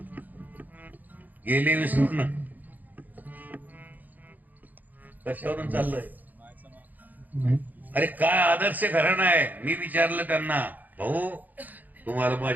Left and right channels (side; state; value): left; late; 0.083 ms